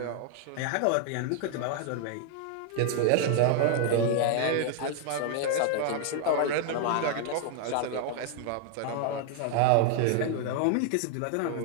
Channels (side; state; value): both; different; correlation 0.00